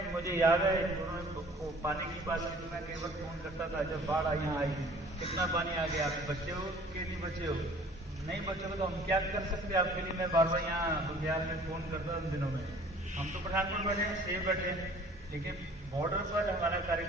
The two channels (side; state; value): both; normal; correlation 0.51